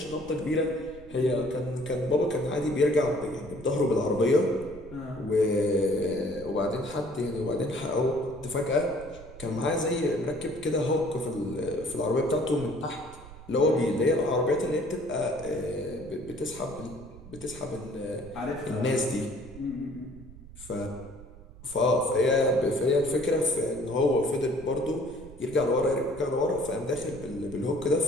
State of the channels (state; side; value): noise; right; rumble, 17 dB below the sound